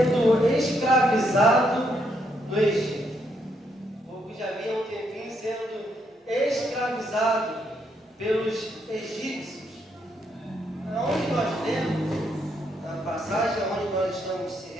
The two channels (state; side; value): normal; both; correlation 0.75